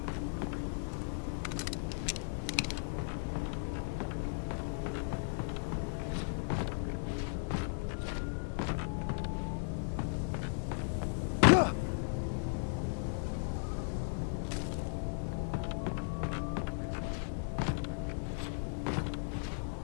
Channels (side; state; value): right; silent; digital silence